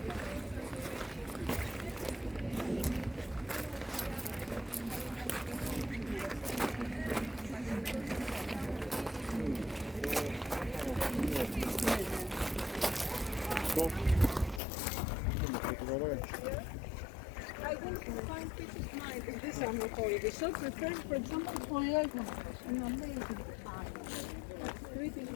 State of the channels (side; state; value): right; drops out; at 14.6 s